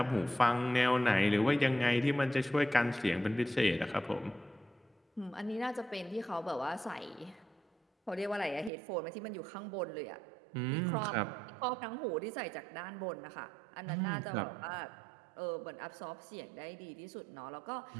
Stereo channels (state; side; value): drops out; left; at 8.7 s